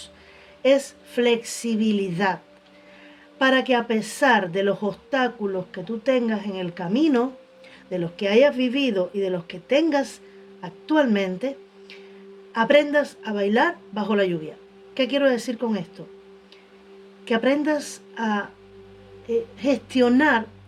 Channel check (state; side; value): identical; both; correlation 1.00